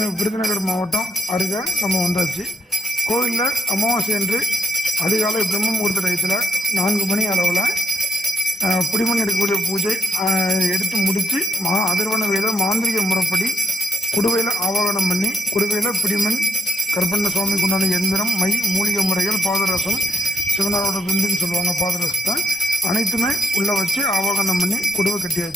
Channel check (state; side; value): normal; both; correlation 0.82